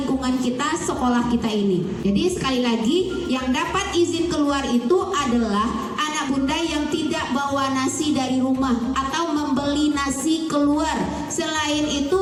kita, sekolah kita ini. Jadi sekali lagi, yang dapat izin keluar itu adalah anak bunda yang tidak bawa nasi dari rumah atau membeli nasi keluar. Selain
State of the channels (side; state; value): both; identical; correlation 1.00